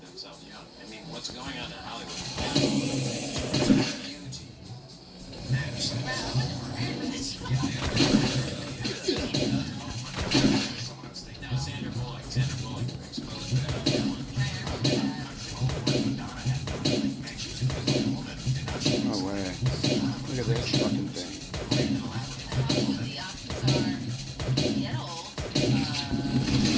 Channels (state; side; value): identical; both; correlation 1.00